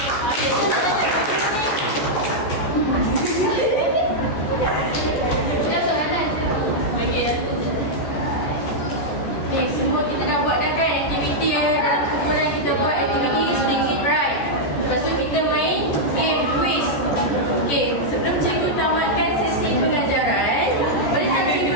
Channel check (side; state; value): right; late; 14 ms